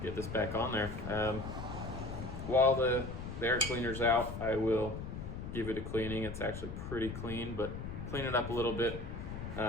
get this back on there. While the air cleaner's out, I will give it a cleaning. It's actually pretty clean, but clean it up a little bit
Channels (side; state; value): left; noise; rumble, 7 dB below the sound